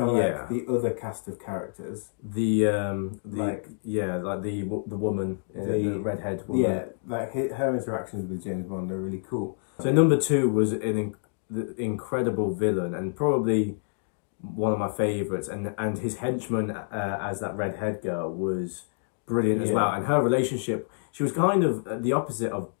like the other cast of characters, the woman, the redhead woman, like her interactions with James Bond are really cool. So number 2 was the incredible villain, and probably one of my favourites, and his henchman as that redhead girl was brilliant as well. And her relationship, she was kind of the opposite of.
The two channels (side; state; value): right; silent; digital silence